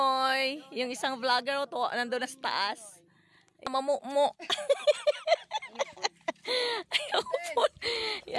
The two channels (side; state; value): both; identical; correlation 1.00